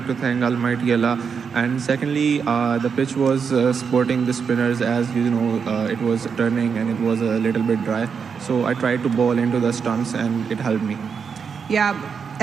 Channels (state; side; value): quieter; left; 6.2 dB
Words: to thank Almighty Allah. And secondly, the pitch was supporting the spinners, as you know, it was turning and it was a little bit dry. So I tried to bowl into the stumps and it helped me. Yeah,